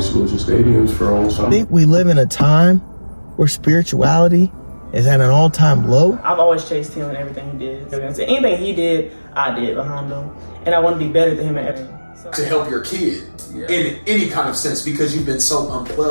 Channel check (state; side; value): inverted; both; correlation -1.00